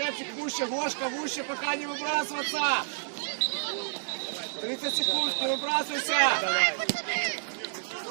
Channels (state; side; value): silent; left; digital silence